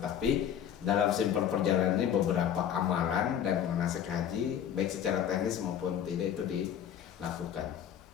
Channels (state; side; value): quieter; right; 9.4 dB